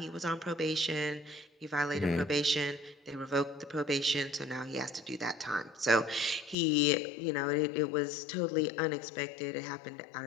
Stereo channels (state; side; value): drops out; right; at 6.6 s